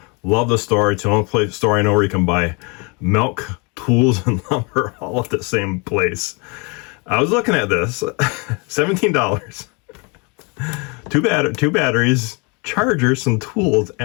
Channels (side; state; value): right; quieter; 31.3 dB